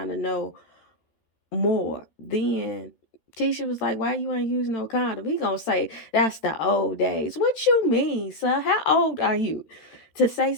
of know more. Then Tisha was like, why you ain't use no condom? He gonna say, that's the old days. What you mean, sir? How old are you to say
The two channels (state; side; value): late; right; 13 ms